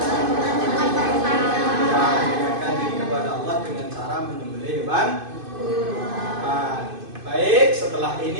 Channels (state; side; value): late; left; 2.5 ms